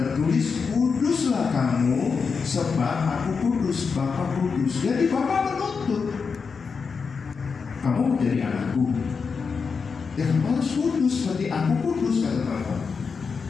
tertulis, kuduslah kamu sebab aku kudus, Bapa kudus. Jadi Bapa menuntut kamu menjadi anakku, ya kamu harus kudus seperti aku kudus, kata Bapa.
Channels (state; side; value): quieter; right; 5.4 dB